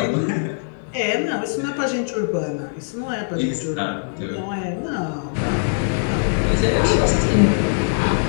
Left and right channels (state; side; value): silent; right; digital silence